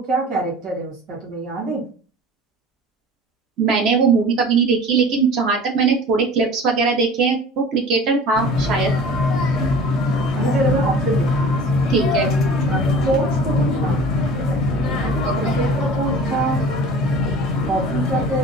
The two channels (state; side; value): normal; both; correlation 0.42